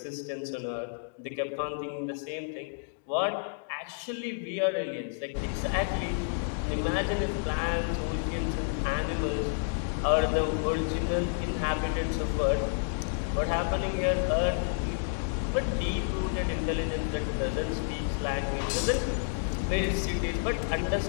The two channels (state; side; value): silent; right; digital silence